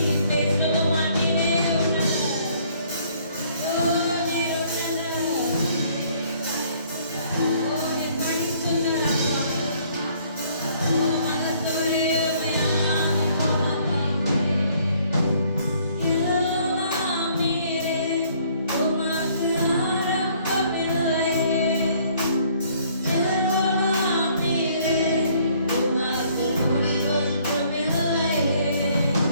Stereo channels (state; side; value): inverted; both; correlation -0.62